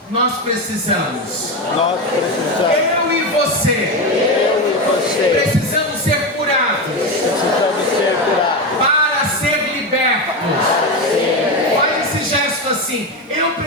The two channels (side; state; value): both; normal; correlation 0.15